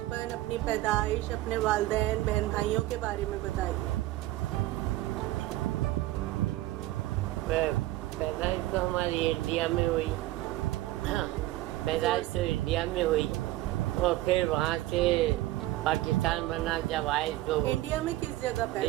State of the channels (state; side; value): quieter; left; 16.7 dB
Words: अपनी पैदाइश, अपने वालिदैन, बहन भाइयों के बारे में बताइए। पैदाइश तो हमारी इंडिया में हुई। पैदाइश तो इंडिया में हुई और फिर वहाँ से पाकिस्तान बना। जब आए तो इंडिया में किस जगह पैदा